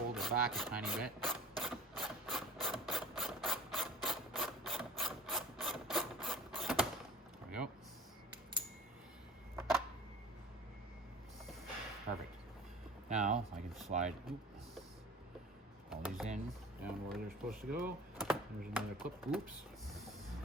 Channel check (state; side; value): normal; both; correlation 0.41